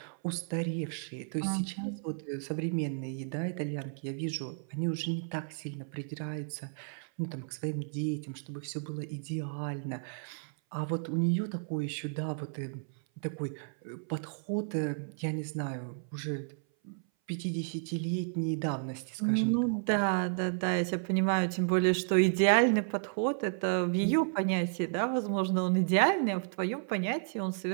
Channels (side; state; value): left; silent; 56 dB below the other